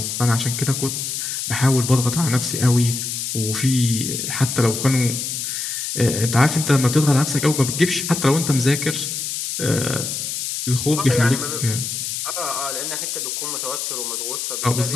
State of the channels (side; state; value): left; noise; hiss, 3 dB below the sound